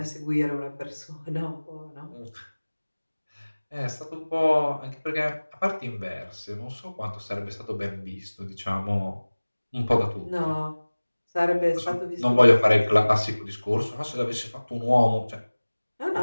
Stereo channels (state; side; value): inverted; both; correlation -1.00